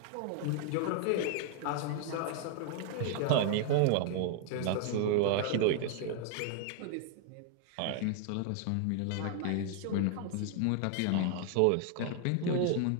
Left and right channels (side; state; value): both; different; correlation 0.00